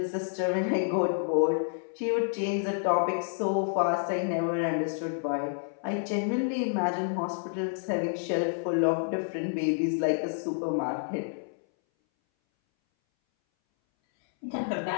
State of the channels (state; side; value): silent; right; 59 dB below the other